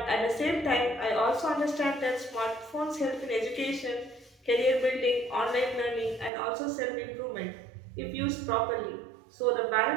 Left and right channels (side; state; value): left; drops out; at 6.3 s